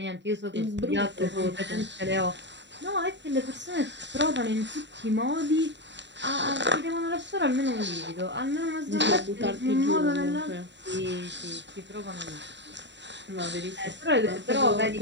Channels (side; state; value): left; late; 0.52 ms